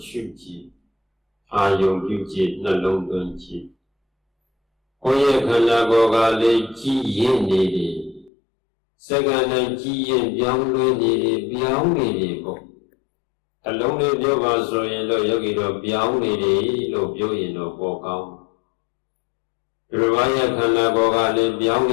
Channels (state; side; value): drops out; right; at 8.3 s